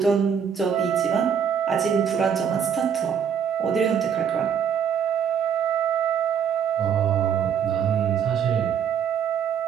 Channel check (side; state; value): left; quieter; 7.7 dB